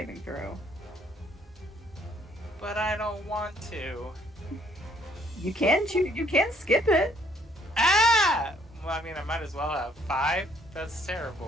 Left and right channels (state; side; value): normal; both; correlation 0.65